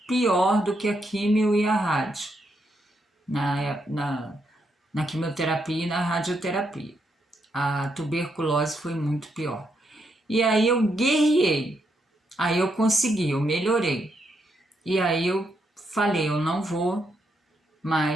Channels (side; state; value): both; normal; correlation 0.79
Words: pior do que a químio e a rádio, na quimioterapia e na radioterapia. A tuberculose foi muito pior. E aí eu guerriei, aí eu consegui, eu melhorei. E aí eu falei, eu não vou